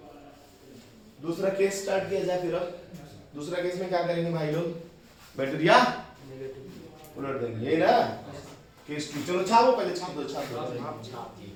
दूसरा केस स्टार्ट किया जाए फिर। अब दूसरा केस में क्या करेंगे भाई लोग? बैटरिया उलट देंगे, ये ना केस 2। चलो छापो, पहले छाप दो छाप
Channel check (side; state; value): both; identical; correlation 1.00